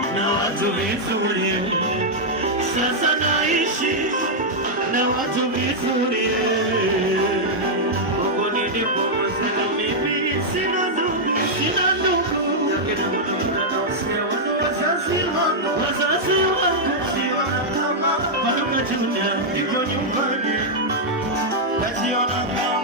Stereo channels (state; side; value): normal; both; correlation -0.05